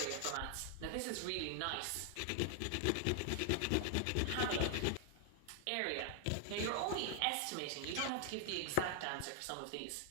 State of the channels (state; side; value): different; both; correlation 0.00